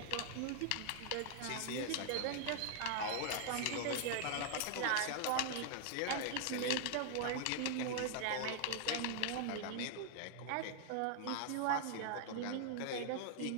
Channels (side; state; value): both; different; correlation 0.00